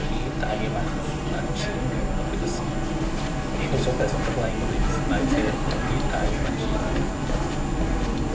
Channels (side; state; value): both; identical; correlation 1.00